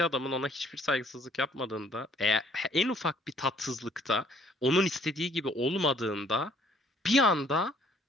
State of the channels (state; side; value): normal; both; correlation 0.61